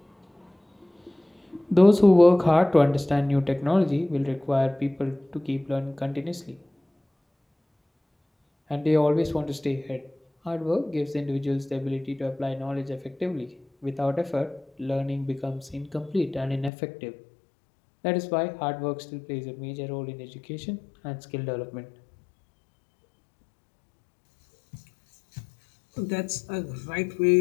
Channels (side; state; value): right; drops out; at 16.7 s